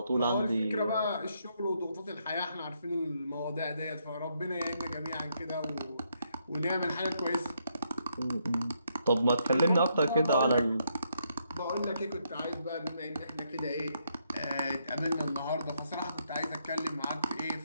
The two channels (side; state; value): both; inverted; correlation -0.76